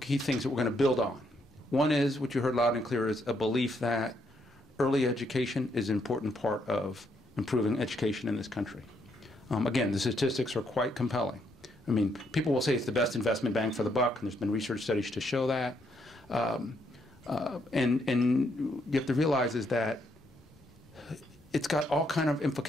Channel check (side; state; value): both; normal; correlation 0.74